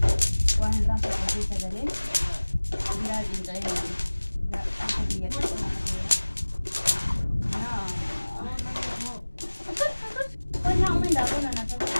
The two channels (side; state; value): both; inverted; correlation -1.00